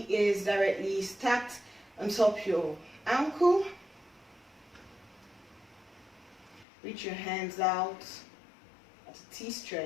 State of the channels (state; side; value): drops out; right; at 6.7 s